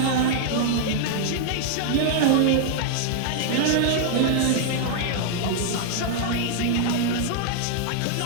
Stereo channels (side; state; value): both; different; correlation -0.01